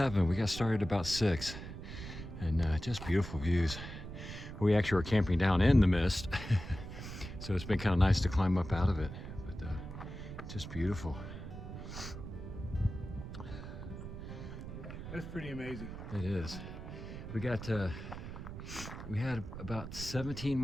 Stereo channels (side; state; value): right; noise; rumble, 9 dB below the sound